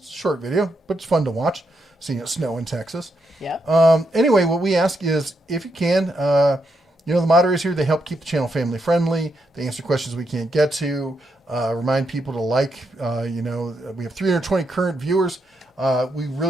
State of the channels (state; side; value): normal; both; correlation 0.81